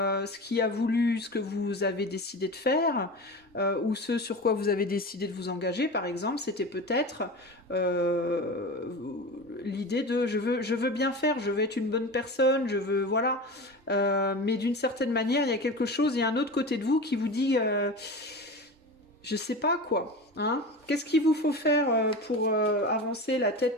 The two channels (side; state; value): both; normal; correlation 0.30